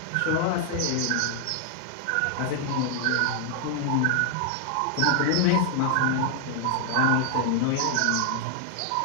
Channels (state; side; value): different; both; correlation 0.00